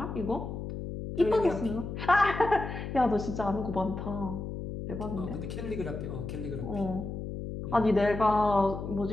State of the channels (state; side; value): noise; left; hum, 6 dB below the sound